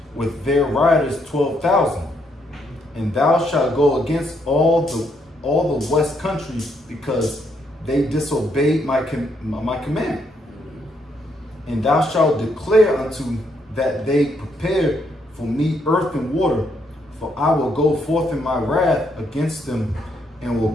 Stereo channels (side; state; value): both; normal; correlation 0.74